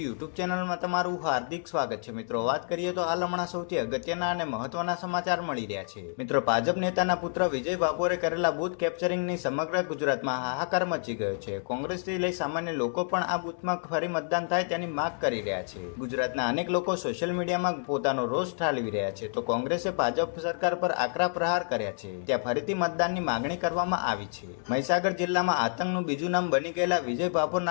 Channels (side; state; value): right; silent; 59 dB below the other